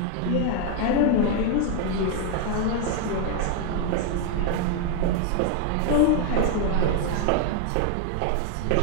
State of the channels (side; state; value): both; different; correlation 0.01